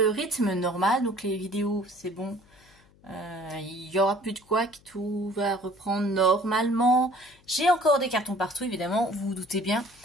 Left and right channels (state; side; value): noise; left; hum, 29 dB below the sound